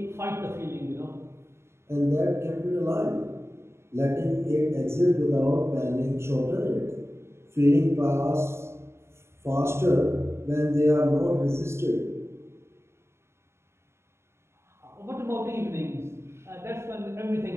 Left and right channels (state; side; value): late; left; 0.13 ms